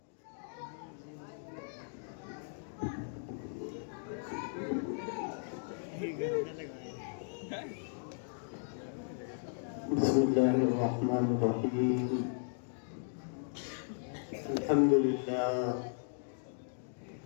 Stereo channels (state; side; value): silent; right; digital silence